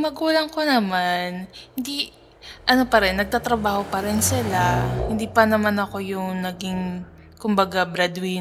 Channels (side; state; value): both; identical; correlation 1.00